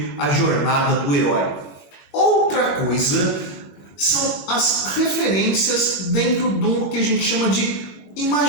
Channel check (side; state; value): right; late; 21 ms